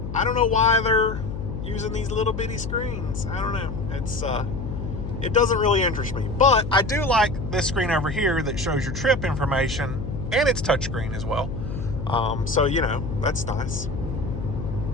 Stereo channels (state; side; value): noise; left; hum, 6 dB below the sound